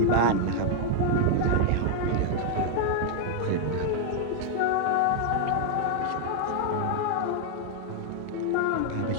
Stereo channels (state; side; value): different; both; correlation 0.00